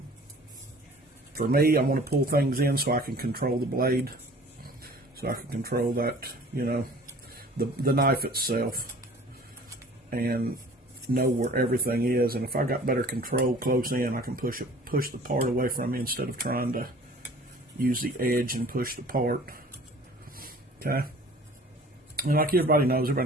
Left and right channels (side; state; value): both; normal; correlation 0.48